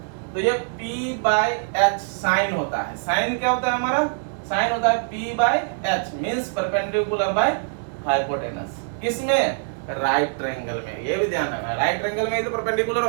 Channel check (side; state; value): left; silent; 63 dB below the other